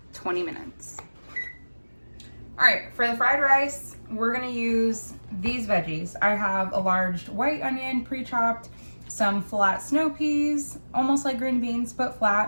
20 minutes. All right, for the fried rice, we're gonna use these veggies. I have a large white onion pre-chopped, some flat snow peas, almost like green beans, but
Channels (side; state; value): both; inverted; correlation -1.00